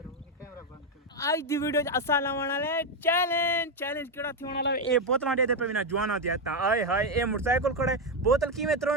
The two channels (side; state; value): both; normal; correlation 0.06